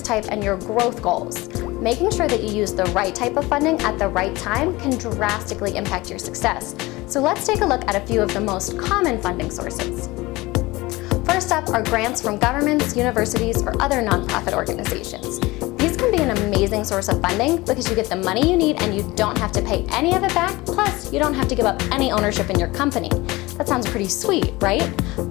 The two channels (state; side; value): quieter; right; 21.0 dB